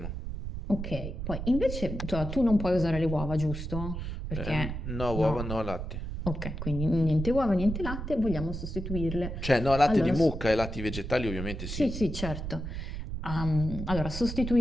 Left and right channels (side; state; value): right; noise; rumble, 5 dB below the sound